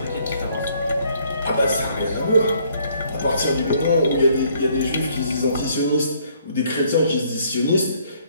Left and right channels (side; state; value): both; inverted; correlation -0.65